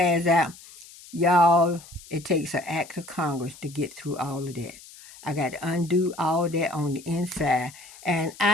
out, y'all, it takes an act of Congress to get through all of that. I got to undo all of that on the inside. And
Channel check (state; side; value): noise; left; hiss, 20 dB below the sound